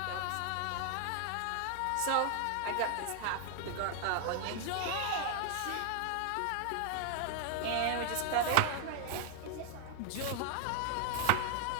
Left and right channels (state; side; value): different; both; correlation 0.00